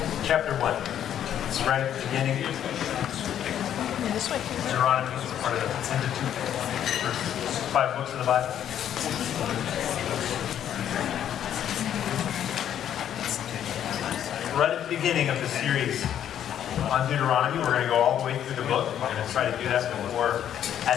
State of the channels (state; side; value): quieter; right; 10.1 dB